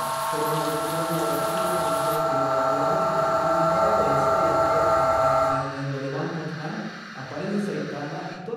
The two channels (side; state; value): both; identical; correlation 1.00